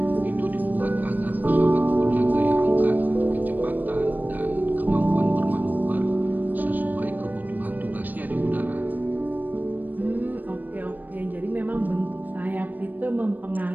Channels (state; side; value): late; left; 0.086 ms